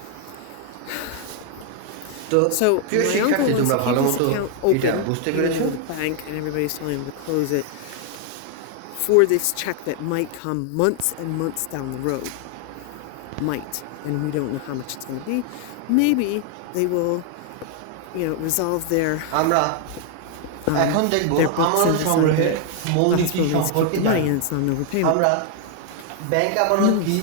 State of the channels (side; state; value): both; different; correlation 0.00